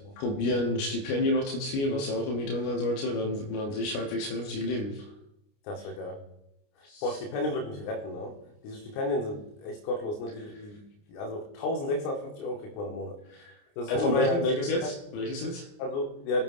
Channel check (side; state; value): right; late; 29 ms